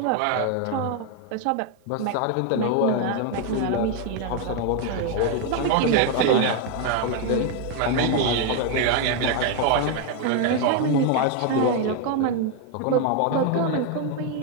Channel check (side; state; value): both; different; correlation 0.01